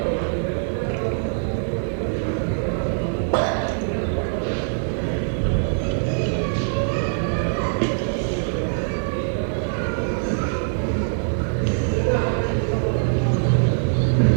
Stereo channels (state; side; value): silent; left; digital silence